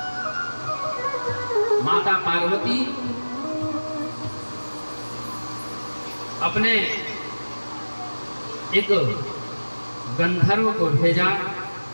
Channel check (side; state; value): both; inverted; correlation -1.00